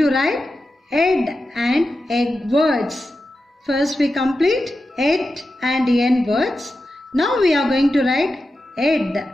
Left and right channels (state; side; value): normal; both; correlation 0.91